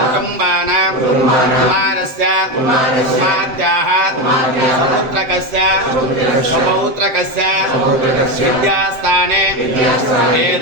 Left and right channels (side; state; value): left; late; 7.8 ms